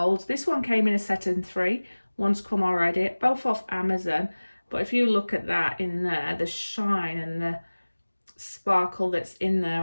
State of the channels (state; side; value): inverted; both; correlation -1.00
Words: This one came in a set of 3. One's come already, both off Amazon. But if you look at that in there, the shine and the sparkle that's in